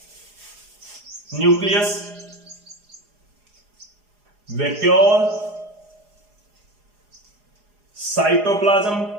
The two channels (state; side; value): late; left; 4.8 ms